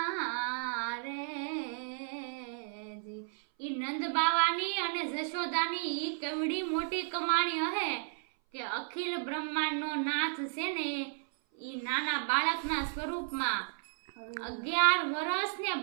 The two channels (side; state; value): left; silent; 55 dB below the other